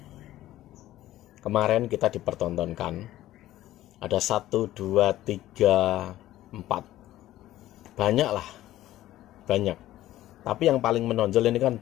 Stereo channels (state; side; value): quieter; right; 14.6 dB